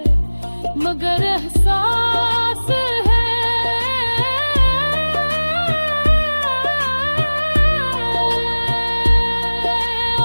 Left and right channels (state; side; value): inverted; both; correlation -1.00